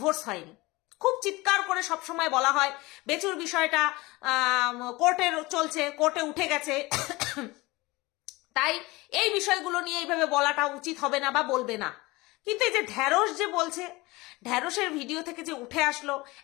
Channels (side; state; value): right; quieter; 22.1 dB